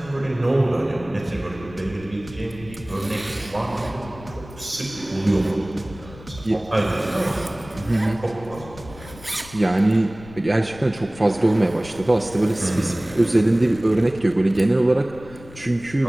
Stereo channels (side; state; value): left; noise; rumble, 18 dB below the sound